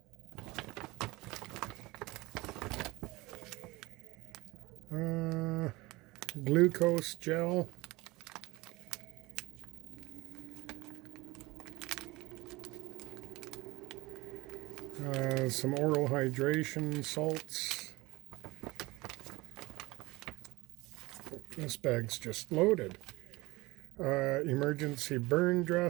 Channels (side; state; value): left; quieter; 21.7 dB